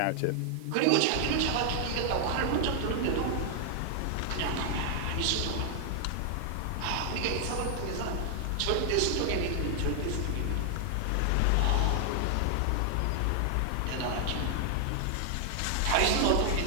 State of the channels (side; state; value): both; different; correlation 0.00